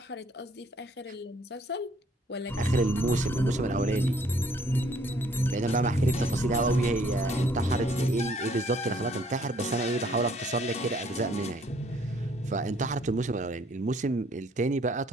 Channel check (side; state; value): both; normal; correlation 0.62